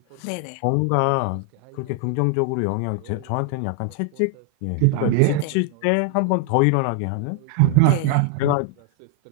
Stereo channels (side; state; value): both; different; correlation 0.00